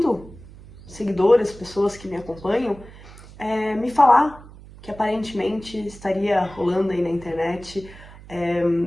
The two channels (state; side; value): noise; right; hum, 19 dB below the sound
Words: seguidores, pessoas que me acompanham, me falar que aparentemente estaria rolando aí na internet